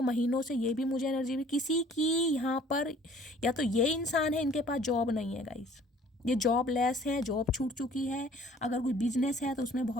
महीनों से, ये भी मुझे एनर्जी भी किसी की यहाँ पर, या तो ये इंसान है इनके पास जॉब नहीं है गाइज, ये जॉब लेस है, जॉब छूट चुकी है। अगर कोई बिजनेस है तो उसमें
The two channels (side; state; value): both; normal; correlation 0.54